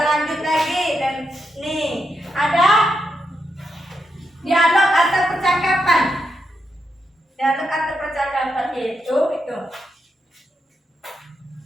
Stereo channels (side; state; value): both; normal; correlation 0.84